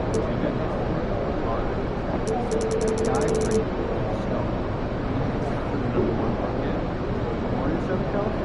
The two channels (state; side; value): identical; both; correlation 1.00